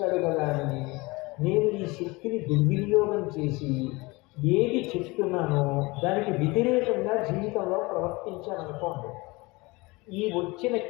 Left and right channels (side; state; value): right; quieter; 23.8 dB